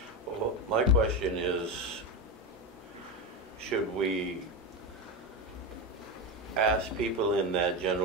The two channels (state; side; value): normal; both; correlation 0.16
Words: Well, my question is, should we ask people in that